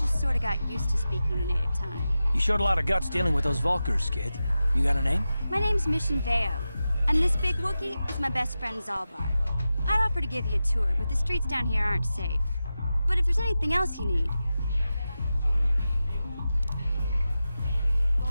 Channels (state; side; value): inverted; both; correlation -0.93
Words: sort of got used to speaking the native tongue. You showed a lot of guts dealing with those Vulkars, kid. You got a name? My name's Mission Veo, and this big Wookiee is my best friend Zalbar. I'd offer to give you a tour, but the streets down here aren't safe. But if there's anything else you need...